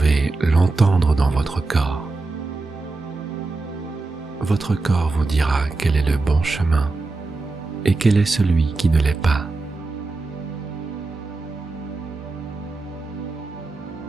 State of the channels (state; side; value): quieter; left; 3.5 dB